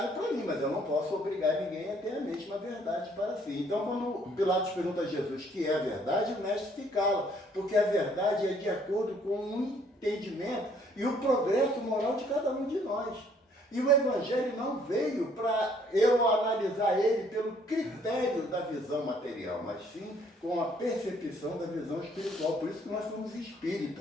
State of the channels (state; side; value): normal; both; correlation 0.63